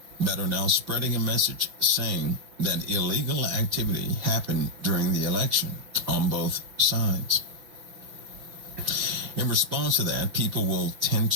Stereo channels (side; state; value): left; late; 5.9 ms